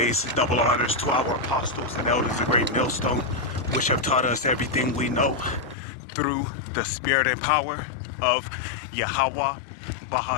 double honors to our apostles and elders of Great Millstone, which have taught us everything we know through the spirit and power of Yahweh,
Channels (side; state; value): right; drops out; at 5.8 s